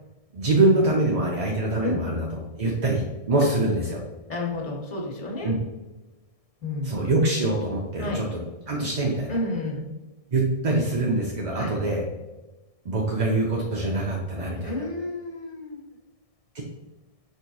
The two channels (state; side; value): late; left; 1.6 ms